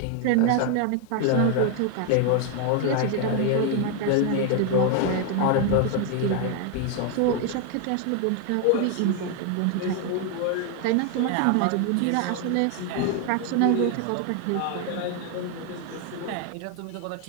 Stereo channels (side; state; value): both; different; correlation 0.00